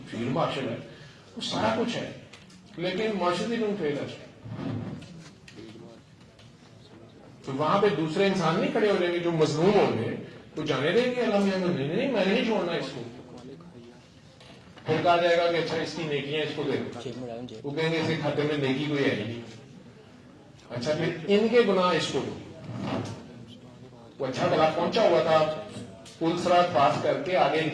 فیلڈ مارشل ہے, وہ سارا کچھ ہے, لیکن معاشرتی لوگ فیلر. تو وہاں پہ دوسرے انسان نہیں کھڑے ہو جائیں گے جو مظلوم ہوں گے, وہ جانے دیں گے اللہ میاں نہیں, میں نے نہیں چھوڑنا اس کو. پھر کہا جائے گا کہ اچھا اس کی نیکیاں اس کو دے دو, وہ کہیں گے اس کے کھاتے میں نیکی کوئی ہے نہیں. اچھا پھر ان کے گناہ اس کو دو. وہ اچھا بلا پہنچا ہوا تھا پل سرات پاس کر کے آگے ایک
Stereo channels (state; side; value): identical; both; correlation 1.00